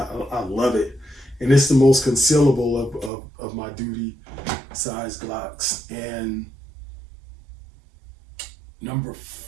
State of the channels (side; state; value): left; drops out; at 3.1 s